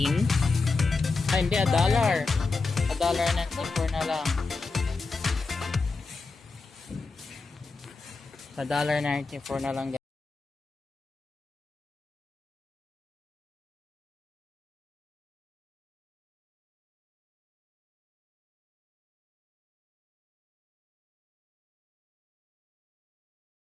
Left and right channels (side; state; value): right; quieter; 4.0 dB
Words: Ah hindi, $1. $1.94 na lang. $1.94 na lang guys.